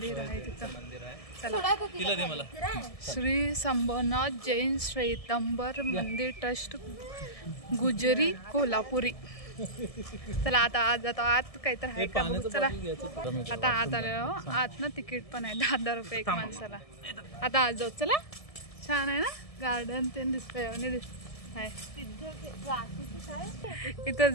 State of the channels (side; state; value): right; late; 1.7 ms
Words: आहे तिथं, चला। श्री संभवनाथ जैन श्वेतांबर मंदिर ट्रस्ट गुजरी कोल्हापुरी। चला आता आज जातो, आत काहीतरी आहे का बघू चला। आता आत आलो, आत ना तिकीट पण आहे 10 रुपये एक माणसाला। आता आज जाऊ चला। छान आहे ना गार्डन ते दिसतंय, इथं